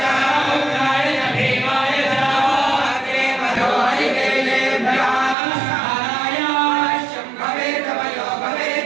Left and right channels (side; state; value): left; drops out; at 5.4 s